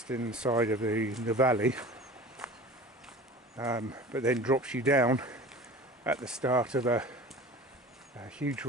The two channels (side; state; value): both; normal; correlation 0.39